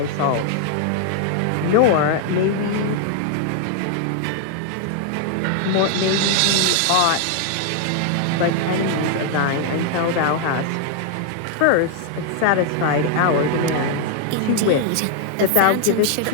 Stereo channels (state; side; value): different; both; correlation 0.00